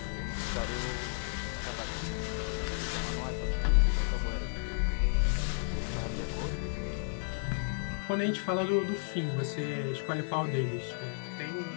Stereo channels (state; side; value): silent; right; digital silence